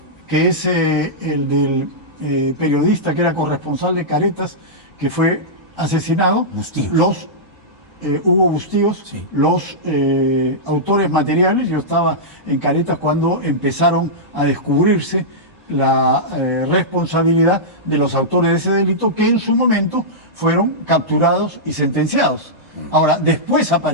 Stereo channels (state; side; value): normal; both; correlation -0.12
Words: que es el del periodista que era corresponsal de Caretas, que fue asesinado, Bustíos. Hugo Bustíos, Sí. los autores materiales, yo estaba en Caretas cuando empezaron a descubrirse la responsabilidad de los autores de ese delito que en su momento fueron capturados y sentenciados. Ahora, después